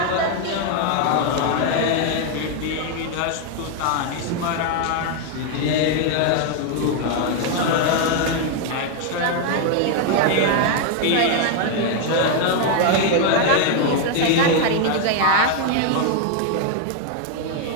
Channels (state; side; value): different; both; correlation 0.01